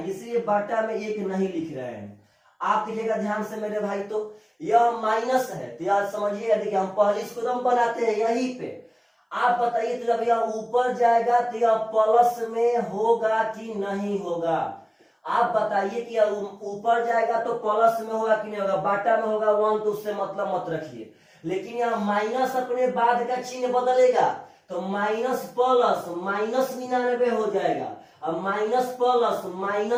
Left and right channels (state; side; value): identical; both; correlation 1.00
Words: इसलिए बाटा में 1 नहीं लिख रहे हैं। आप देखिएगा ध्यान से मेरे भाई, तो यह माइनस है तो यार समझिए, देखिए हम पहले इसको हम बनाते हैं यहीं पे। आप बताइए तो जब यह ऊपर जाएगा तो यह प्लस में होगा कि नहीं होगा? आप बताइए कि यह ऊपर जाएगा तो प्लस में होगा कि नहीं होगा? बाटा में होगा 1 तो उससे मतलब मत रखिए। लेकिन यह माइनस अपने बाद का चिन्ह बदलेगा तो माइनस प्लस माइनस 99 हो जाएगा और माइनस प्लस